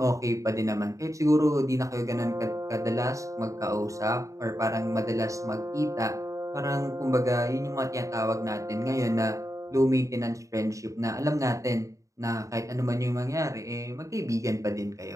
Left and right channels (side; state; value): left; late; 0.16 ms